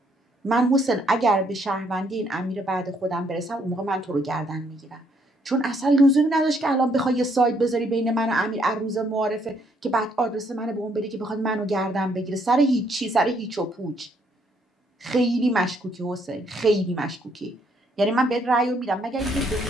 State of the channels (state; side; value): normal; both; correlation 0.70